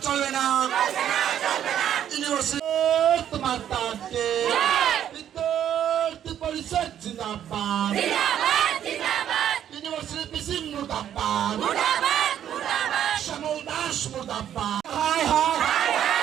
চলবে না। ইউনিভার্সিটি তোমার তাকে বিদ্যার্থী পরিষদ জিন্দাবাদ, ইউনিভার্সিটি পিসি মুর্দাবাদ, শ্যামল দাস মুর্দাবাদ। হায় হায়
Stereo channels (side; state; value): left; quieter; 10.2 dB